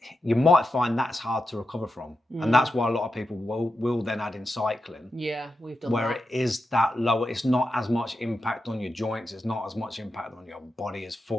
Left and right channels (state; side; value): normal; both; correlation 0.88